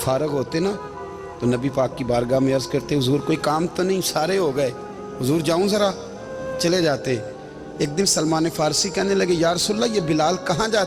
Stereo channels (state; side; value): identical; both; correlation 1.00